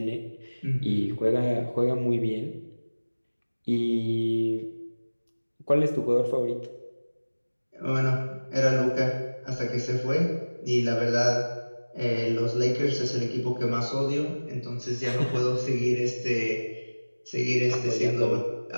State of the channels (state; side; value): inverted; both; correlation -1.00